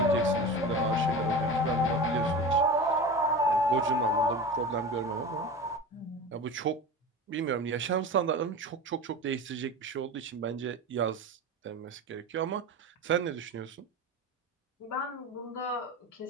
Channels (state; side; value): normal; both; correlation 0.30